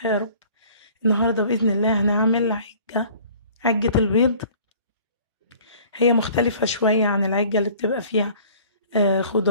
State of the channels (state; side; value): inverted; both; correlation -0.51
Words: يا رب. النهاردة بإذن الله هنعمل عجة البيض. هي مختلفة شوية عن العجة اللي بتبقى فيها